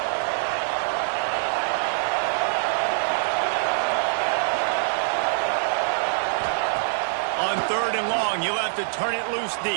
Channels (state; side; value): silent; left; digital silence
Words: On 3rd and long, you'll have to turn it loose